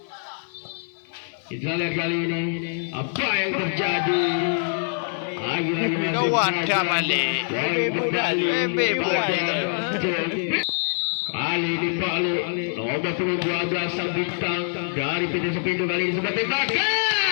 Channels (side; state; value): right; silent; digital silence